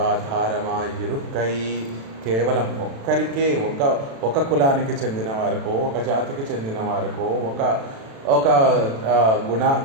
కేవలం ఒక్కరికే, ఒక కులానికి చెందిన వారికో, ఒక జాతికి చెందిన వారికో, ఒక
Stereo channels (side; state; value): left; late; 36 ms